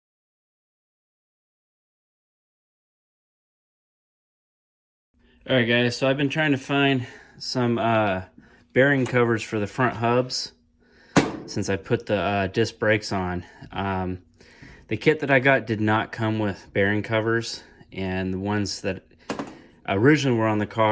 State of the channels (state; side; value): identical; both; correlation 1.00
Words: Alright guys, so I've been trying to find some bearing covers for the front hubs since I put the disc brakes on. The kit that I got did not come with bearing covers, and the ones that originally were on the